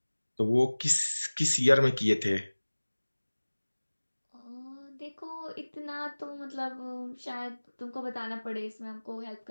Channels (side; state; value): both; inverted; correlation -1.00